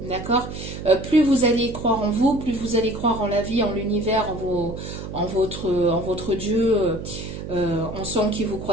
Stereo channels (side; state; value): right; noise; hum, 9 dB below the sound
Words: d'accord? Plus vous allez croire en vous, plus vous allez croire en la vie, en l'univers, en votre Dieu, en ce en qui vous